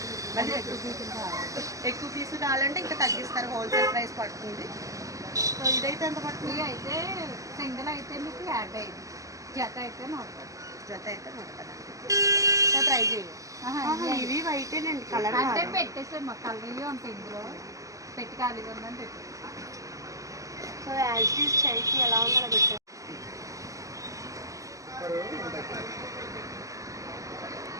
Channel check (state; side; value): late; left; 0.16 ms